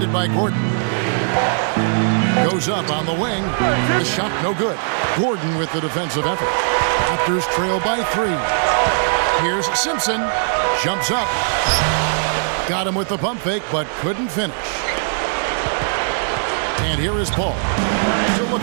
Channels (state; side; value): silent; left; 66 dB below the other